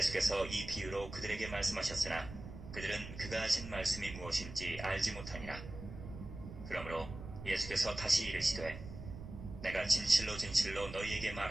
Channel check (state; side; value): noise; right; rumble, 11 dB below the sound